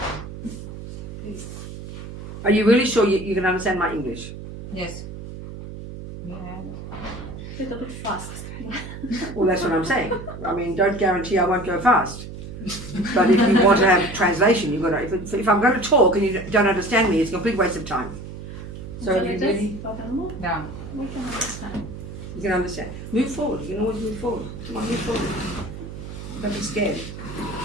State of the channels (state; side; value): noise; right; hum, 11 dB below the sound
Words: Please. Are you really sure you can understand my English? Yes. A little bit fast. Well, that's what I'm saying. I mean, don't guarantee I won't go fast. But if you want to have translation, you've got to. If I'm going to talk and you don't understand me, it's a complete waste of time. So, are you ready? Yeah. We can understand. You can understand. Move forward. You can always move forward. Come on, move forward. Don't be scared.